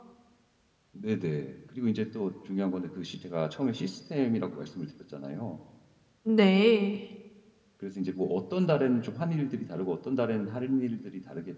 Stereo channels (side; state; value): both; identical; correlation 1.00